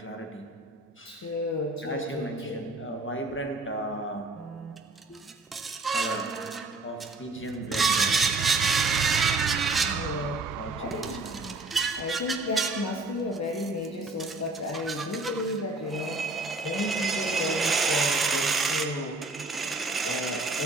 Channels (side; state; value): left; quieter; 3.1 dB